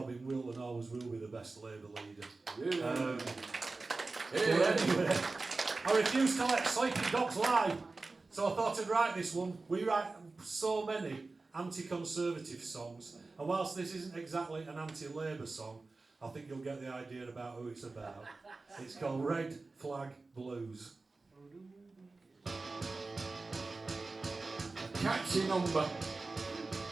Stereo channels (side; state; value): left; quieter; 3.6 dB